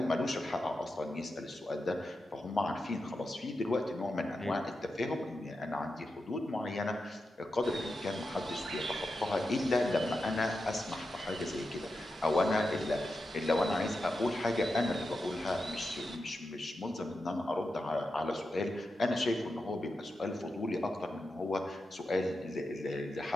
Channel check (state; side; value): normal; both; correlation 0.89